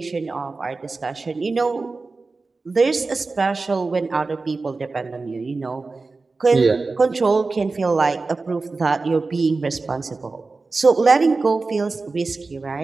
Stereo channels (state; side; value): quieter; left; 3.8 dB